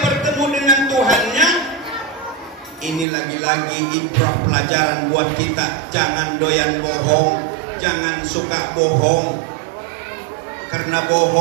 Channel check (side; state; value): left; drops out; at 3.1 s